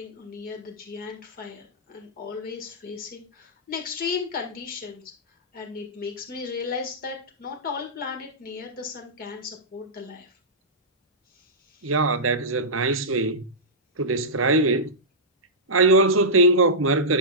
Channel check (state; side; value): normal; both; correlation -0.15